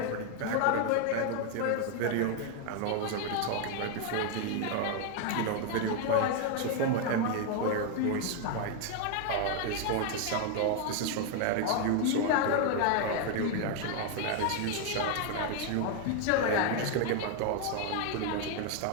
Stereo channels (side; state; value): both; different; correlation 0.01